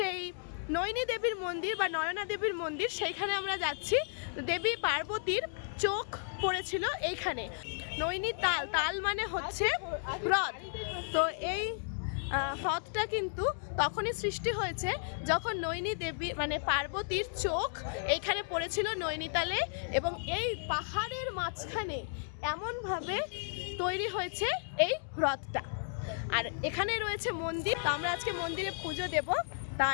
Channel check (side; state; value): right; silent; digital silence